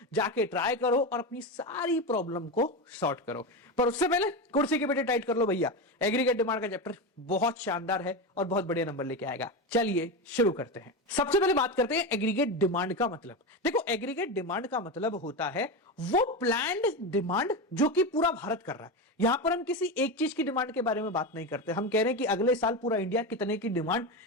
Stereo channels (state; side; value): normal; both; correlation 0.17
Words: जाके ट्राई करो और अपनी सारी प्रॉब्लम को सॉर्ट करो। पर उससे पहले कुर्सी की बेटे टाइट कर लो भैया, एग्रीगेट डिमांड का चैप्टर बहुत शानदार है और बहुत बढ़िया नंबर लेके आएगा। चलिए शुरू करते हैं। सबसे पहले बात करते हैं एग्रीगेट डिमांड का मतलब। देखो, एग्रीगेट डिमांड का मतलब होता है वो प्लान्ड डिमांड जो कि पूरा भारत कर रहा है। यहां पर हम किसी एक चीज की डिमांड के बारे में बात नहीं करते, हम कह रहे हैं कि अगले साल पूरा इंडिया कितने की डिमांड